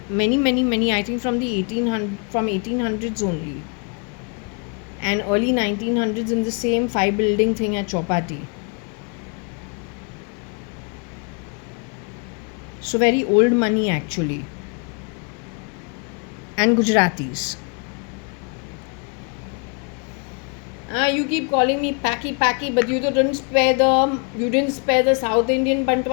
many, I think from the 1800s only, and early 1900s in the same 5-building thing at Chowpatty. So very old money actually. And Gujaratis. You keep calling me packy, but you didn't spare the South Indian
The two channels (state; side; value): quieter; right; 36.7 dB